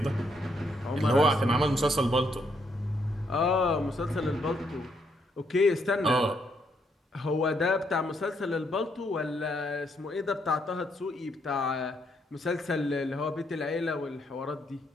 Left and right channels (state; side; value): normal; both; correlation 0.74